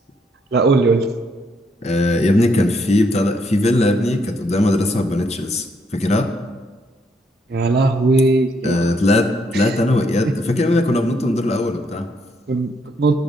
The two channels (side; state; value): both; normal; correlation 0.73